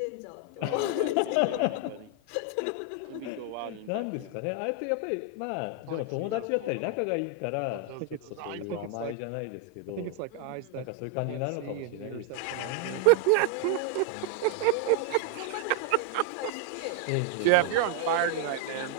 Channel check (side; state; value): both; different; correlation 0.00